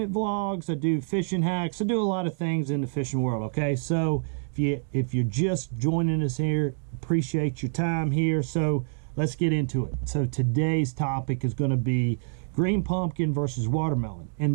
vlogs, I do fishing hacks, I do a lot of things in the fishing world, okay? So if you're just joining us here, appreciate your time here. So let's get into it. So today's topic is going to be green pumpkin versus watermelon. And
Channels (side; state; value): left; silent; digital silence